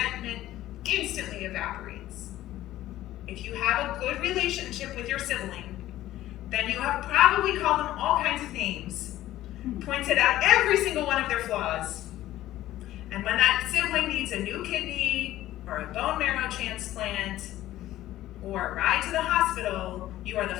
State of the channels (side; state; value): right; quieter; 14.5 dB